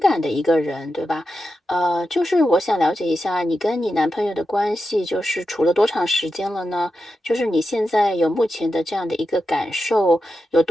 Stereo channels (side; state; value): both; normal; correlation 0.89